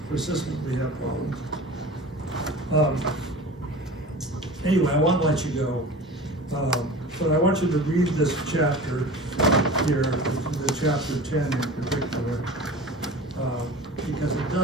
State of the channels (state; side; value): normal; both; correlation 0.36